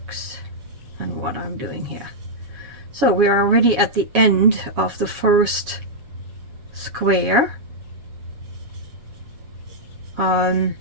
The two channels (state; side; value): late; left; 7.2 ms